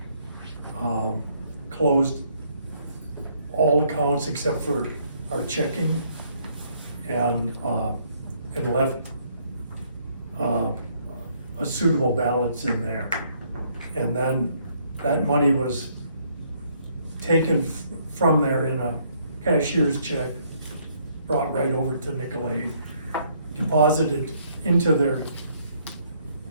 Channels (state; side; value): inverted; both; correlation -0.67